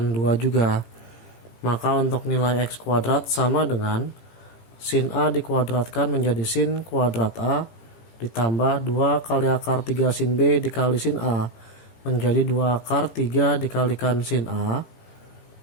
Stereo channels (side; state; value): right; late; 18 ms